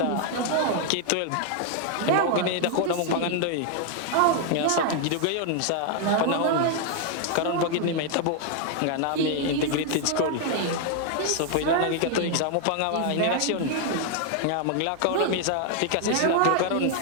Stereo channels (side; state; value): both; different; correlation 0.00